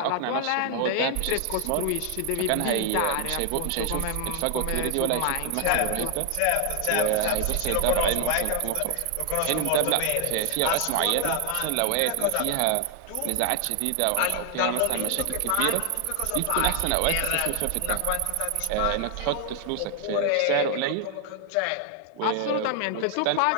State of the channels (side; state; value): both; different; correlation 0.00